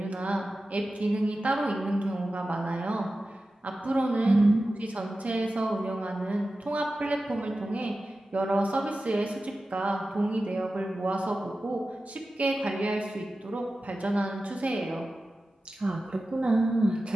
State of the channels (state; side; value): normal; both; correlation 0.94